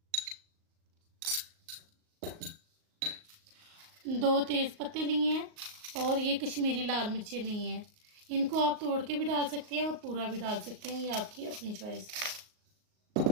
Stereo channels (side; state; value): left; late; 38 ms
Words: 2 तेज़ पत्ते लिए हैं और ये कश्मीरी लाल मिर्चें ली हैं। इनको आप तोड़ के भी डाल सकते हैं और पूरा भी डाल सकते हैं, ये आपकी अपनी चॉइस है।